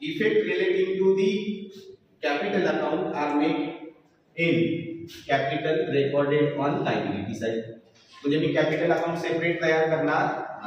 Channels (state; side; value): identical; both; correlation 1.00